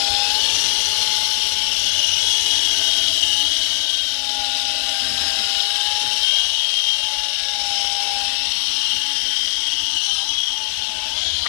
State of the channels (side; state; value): right; silent; digital silence